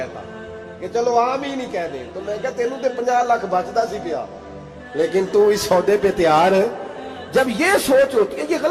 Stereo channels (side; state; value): both; identical; correlation 1.00